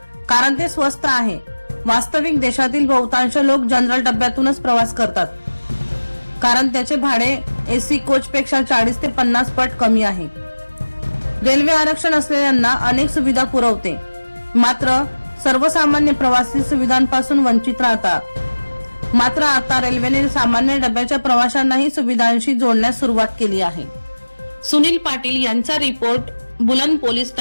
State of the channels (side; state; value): both; inverted; correlation -1.00